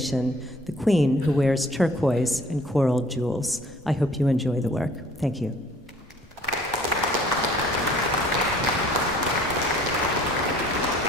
the queen who wears turquoise and coral jewels. I hope you enjoy the work. Thank you.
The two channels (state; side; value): normal; both; correlation 0.55